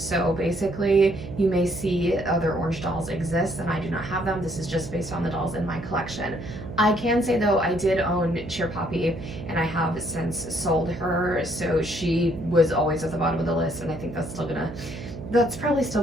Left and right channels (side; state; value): right; noise; hum, 11 dB below the sound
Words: basically, you may see other orange dolls exist and I do not have them. This is just based on the dolls in my collection. I can say though, I did own Cheer Poppy and I have since sold her. So she was always at the bottom of the list, and I think that's probably